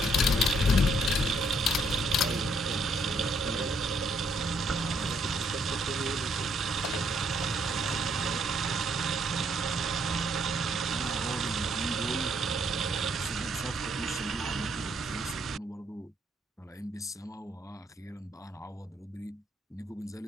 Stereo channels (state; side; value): normal; both; correlation 0.71